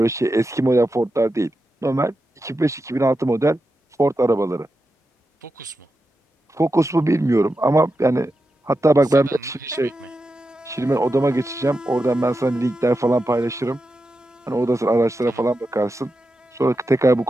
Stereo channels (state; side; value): normal; both; correlation 0.89